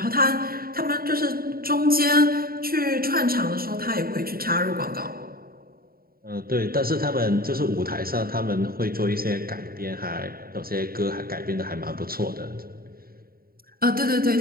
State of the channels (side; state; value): left; late; 0.43 ms